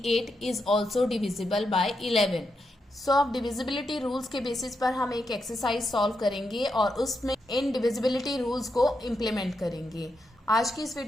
is also divisible by 11। सो अब डिविजिबिलिटी रूल्स के बेसिस पर हम एक एक्सरसाइज सॉल्व करेंगे और उसमें इन डिविजिबिलिटी रूल्स को इम्प्लीमेंट करेंगे। आज की इस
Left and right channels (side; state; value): both; normal; correlation 0.84